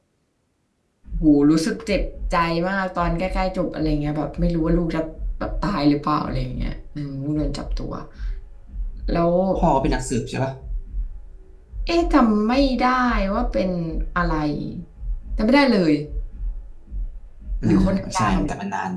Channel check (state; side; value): identical; both; correlation 1.00